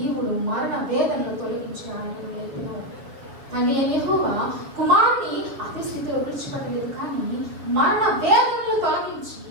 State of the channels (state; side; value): late; left; 7.1 ms